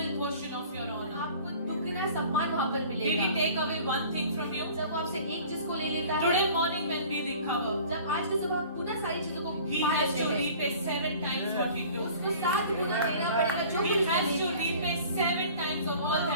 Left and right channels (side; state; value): both; inverted; correlation -0.47